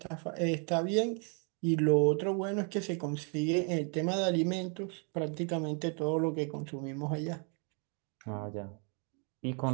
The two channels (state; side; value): quieter; left; 38.7 dB